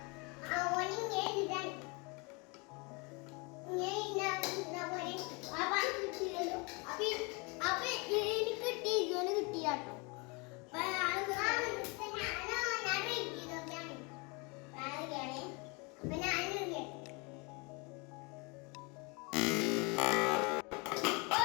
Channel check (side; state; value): right; quieter; 29.7 dB